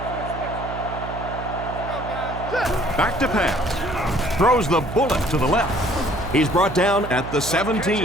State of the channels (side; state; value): right; noise; hum, 9 dB below the sound